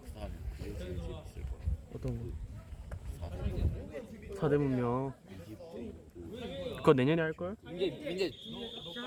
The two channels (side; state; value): both; identical; correlation 1.00